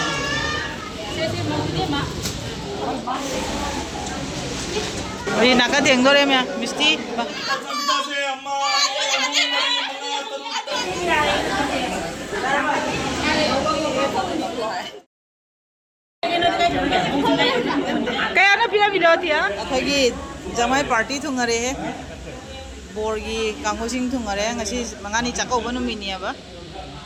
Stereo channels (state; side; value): identical; both; correlation 1.00